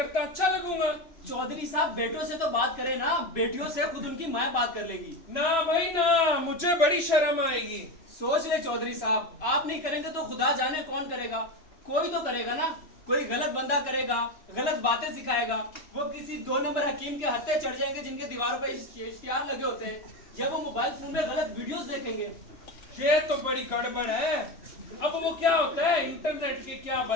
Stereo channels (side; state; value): right; late; 3.0 ms